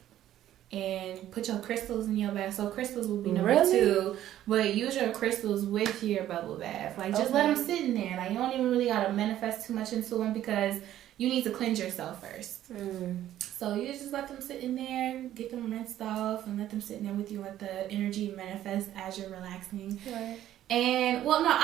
and put your crystals in your bath. So crystals will be number 2. But use your crystals with your bubble bath. Like, just let them sit in there. Like, you don't even really got to manifest too much into them because you need to cleanse yourself first. So you just let them sit in there, get them rinsed off, and let them sit in there with you. Let the energy manifest as you're relaxing. Right. And, well, no,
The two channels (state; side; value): quieter; left; 12.5 dB